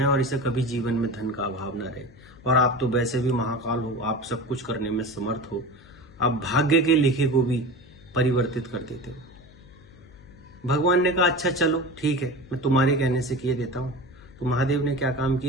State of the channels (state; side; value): noise; left; hum, 24 dB below the sound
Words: और इसे कभी जीवन में धन का अभाव न रहे। और आप तो वैसे भी महाकाल हो, आप सब कुछ करने में समर्थ हो, आप भाग्य के लिखे को भी परिवर्तित कर देते हो। भगवान ने कहा, अच्छा चलो ठीक है, मैं तुम्हारे कहने से किए देता हूँ। तो महादेव ने क्या काम